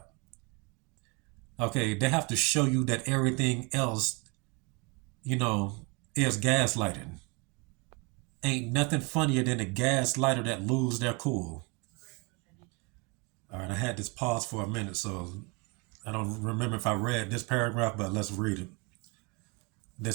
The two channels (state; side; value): quieter; left; 30.3 dB